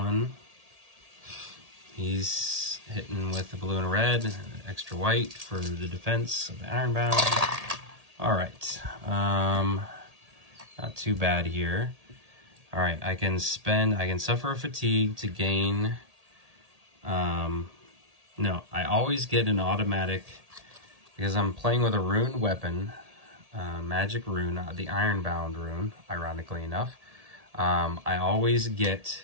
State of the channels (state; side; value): late; left; 1.8 ms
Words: He's hitting with the blue and red, extra white for the defense of the Ironbound. All right, not too bad here. All right, I can suffer a fatigue to gain. No, I always get an automatic, because I'm playing with a rune weapon, magic rune, the Ironbound rune, ironically enough. I always get,